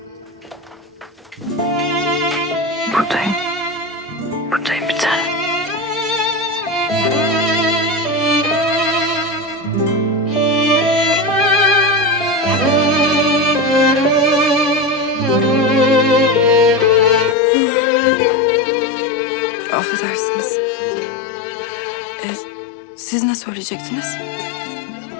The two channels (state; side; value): drops out; right; at 17.4 s